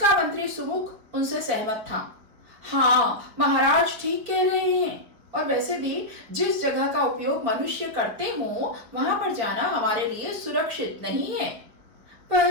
मंत्री सुमुख उनसे सहमत था। हाँ, महाराज ठीक कह रहे हैं। और वैसे भी जिस जगह का उपयोग मनुष्य करते हो, वहां पर जाना हमारे लिए सुरक्षित नहीं है।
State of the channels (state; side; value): late; left; 4.8 ms